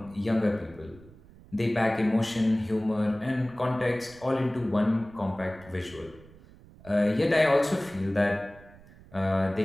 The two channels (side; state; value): right; noise; rumble, 22 dB below the sound